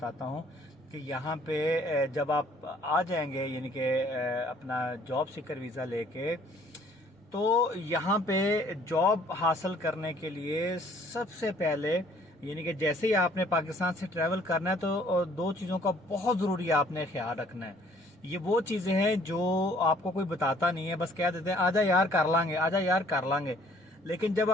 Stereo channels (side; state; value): both; normal; correlation 0.59